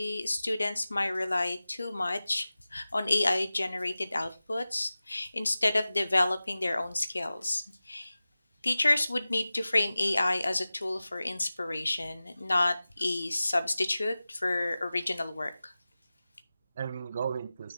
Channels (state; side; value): inverted; both; correlation -0.96